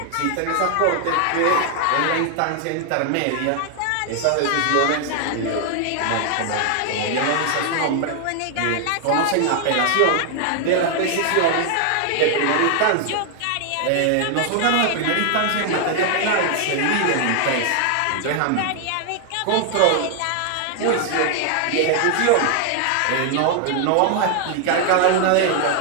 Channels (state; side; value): different; both; correlation 0.00